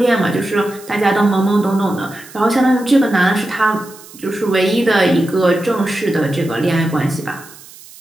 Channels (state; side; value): noise; right; hiss, 20 dB below the sound